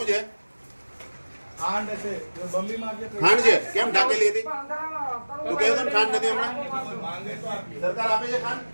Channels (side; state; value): both; inverted; correlation -1.00